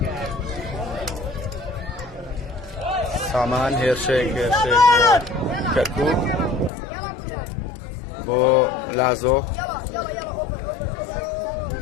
سامان هێرشێک کەرکووک بۆ لازۆ.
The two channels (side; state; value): right; drops out; at 6.7 s